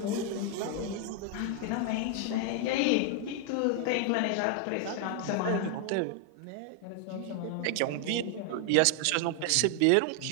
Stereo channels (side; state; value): both; different; correlation 0.00